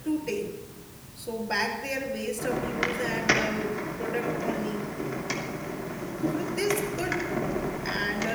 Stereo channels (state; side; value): identical; both; correlation 1.00